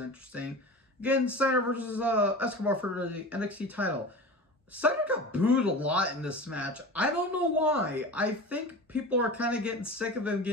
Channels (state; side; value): normal; both; correlation 0.33